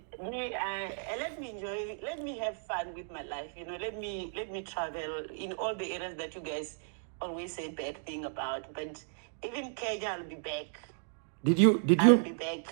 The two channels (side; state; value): left; silent; digital silence